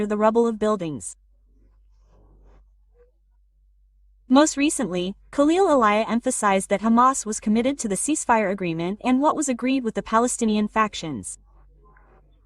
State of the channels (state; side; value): identical; both; correlation 1.00